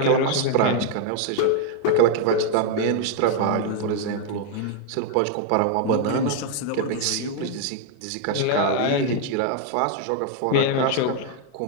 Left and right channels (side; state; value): both; different; correlation 0.00